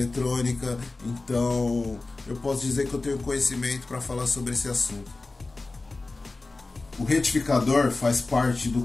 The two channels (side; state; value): right; quieter; 3.4 dB